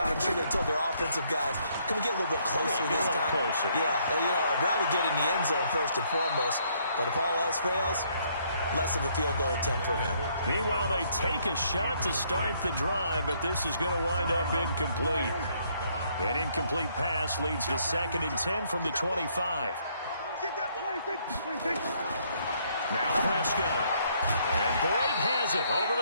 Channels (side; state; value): both; inverted; correlation -0.68